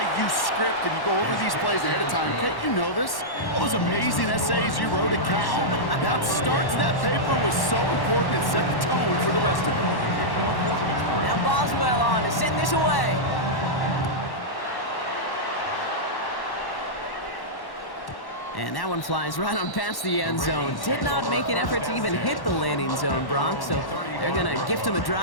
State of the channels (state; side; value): late; right; 1.1 ms